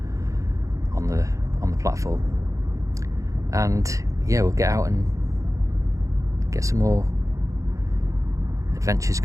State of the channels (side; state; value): left; late; 0.15 ms